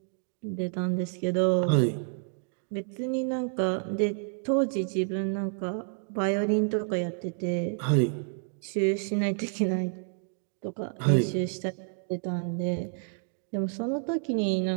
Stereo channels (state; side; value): silent; left; 58 dB below the other